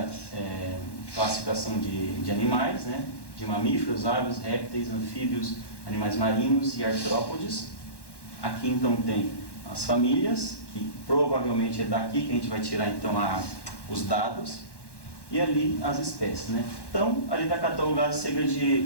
classificação de animais, né? De mamíferos, aves, répteis, anfíbios, animais marinhos e artrópodes. Aqui então tem as famílias, que provavelmente é daqui que a gente vai tirar então os dados, e ali as espécies, né? Então, ali está catalogado cerca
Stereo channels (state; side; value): late; right; 1.1 ms